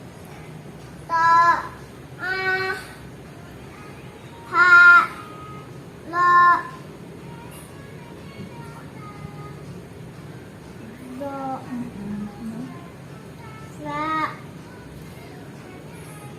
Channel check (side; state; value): both; identical; correlation 1.00